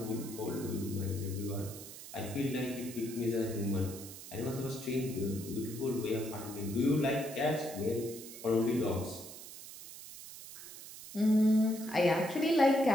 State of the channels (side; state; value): right; noise; hiss, 13 dB below the sound